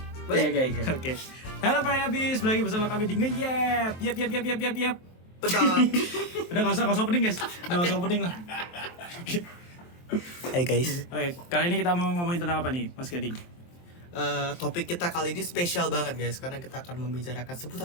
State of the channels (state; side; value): late; right; 23 ms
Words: Oke. Halo Pak Habis, lagi bersama kami di Ngeyep. Yep. Betul. Udah enggak usah opening, guys. Udah enggak usah opening lah. Hai guys, Oke, kali ini kita mau ngomongin tentang apa nih, Mas Gading? topik kita kali ini spesial banget guys, karena kita akan membicarakan